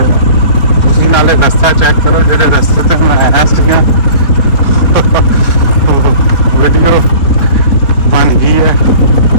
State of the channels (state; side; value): late; right; 4.2 ms